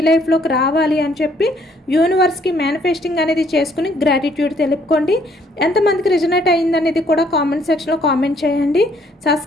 లైఫ్లోకి రావాలి అని చెప్పి యూనివర్స్కి మేనిఫెస్టింగ్ అనేది చేసుకుని గ్రాటిట్యూడ్ తెలుపుకోండి. ఎంతమందికి రిజనేట్ అయిందనేది కూడా కామెంట్ సెక్షన్లో కామెంట్ చేయండి.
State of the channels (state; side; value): normal; both; correlation 0.65